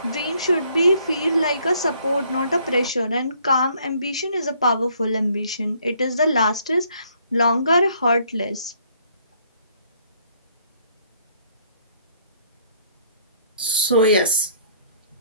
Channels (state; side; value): inverted; both; correlation -0.63